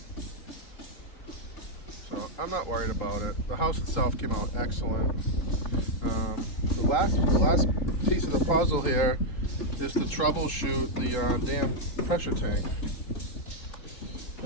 So I'm not worried about it. The house itself came out excellent. The last piece of the puzzle here is to troubleshoot the damn pressure tank.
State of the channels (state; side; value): late; right; 3.8 ms